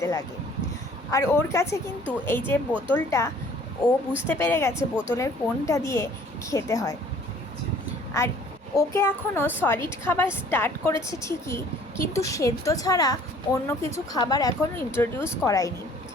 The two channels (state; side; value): normal; both; correlation 0.54